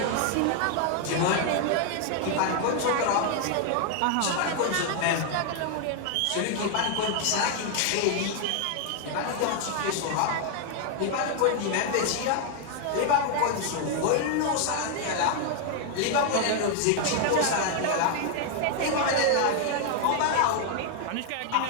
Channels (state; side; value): different; both; correlation 0.00